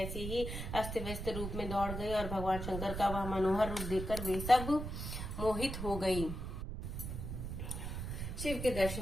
ही अस्त व्यस्त रूप में दौड़ गई और भगवान शंकर का वह मनोहर रूप देखकर वे सब मोहित हो गई। शिव के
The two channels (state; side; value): noise; right; rumble, 5 dB below the sound